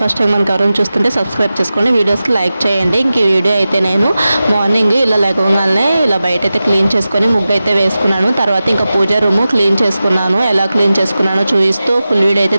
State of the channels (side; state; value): both; inverted; correlation -0.94